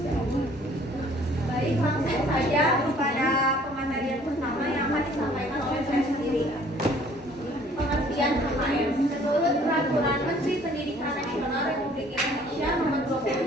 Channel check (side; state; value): both; normal; correlation 0.56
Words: Baik, langsung saja kepada pematerian pertama yang akan disampaikan oleh saya sendiri. Pengertian KKM. Menurut Peraturan Menteri Pendidikan Nasional Republik Indonesia Nomor